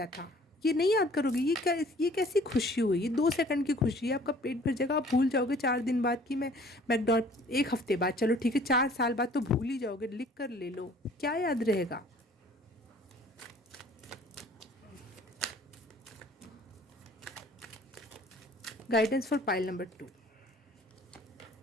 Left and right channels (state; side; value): normal; both; correlation 0.53